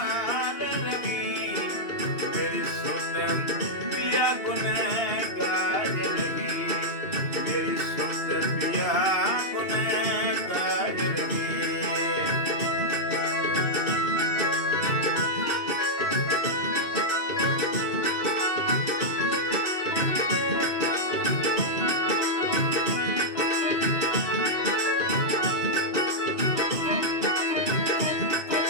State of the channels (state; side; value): late; right; 2.6 ms